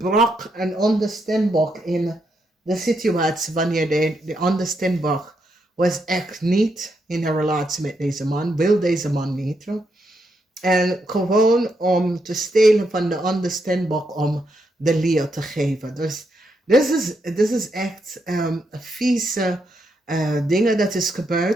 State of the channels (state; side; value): normal; both; correlation 0.80